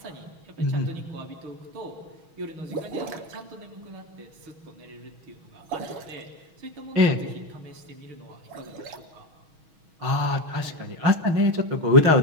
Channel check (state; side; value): late; left; 6.3 ms